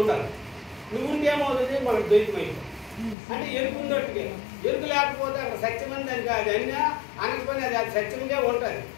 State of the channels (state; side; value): drops out; right; at 3.2 s